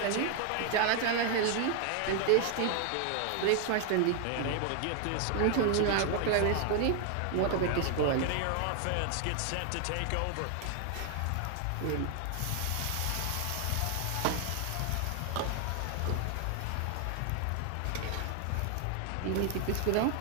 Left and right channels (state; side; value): different; both; correlation 0.00